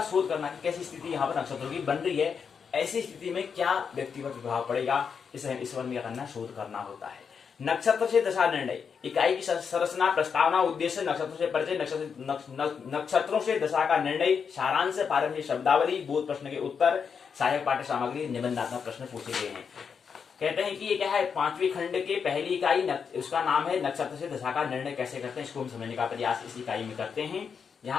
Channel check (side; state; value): right; quieter; 6.4 dB